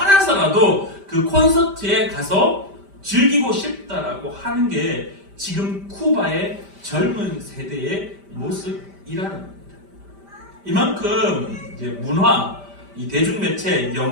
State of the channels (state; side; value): late; left; 5.1 ms